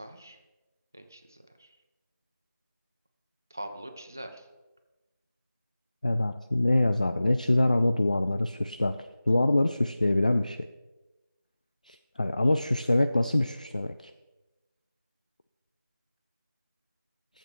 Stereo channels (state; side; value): inverted; both; correlation -0.97